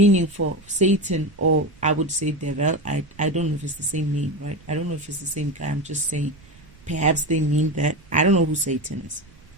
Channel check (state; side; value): noise; right; rumble, 25 dB below the sound